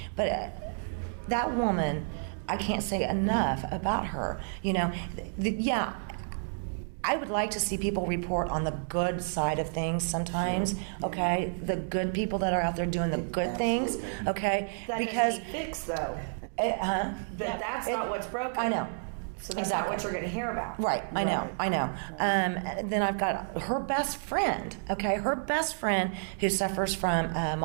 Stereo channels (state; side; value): silent; left; digital silence